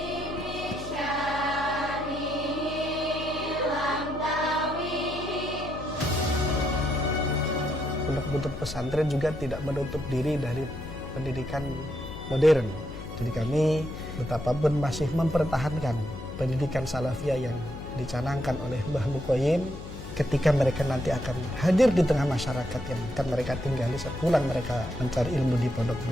Pondok Buntet pesantren juga tidak menutup diri dari pendidikan modern. Jadi kami betapapun masih mempertahankan pendidikan salafiyah yang dicanangkan oleh Mbah Mukhoyim ketika mereka nanti akan hadir di tengah masyarakat yang akan mereka tinggali sepulang mereka mencari ilmu di Pondok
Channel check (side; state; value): left; noise; hum, 11 dB below the sound